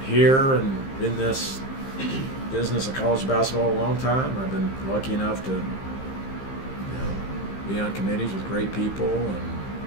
here and in this business of college basketball a long time. I've been lucky enough to, be on committees with great people and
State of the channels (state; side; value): late; right; 15 ms